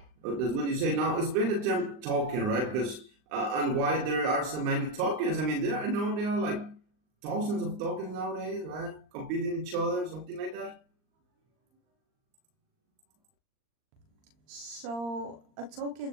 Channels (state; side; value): late; left; 39 ms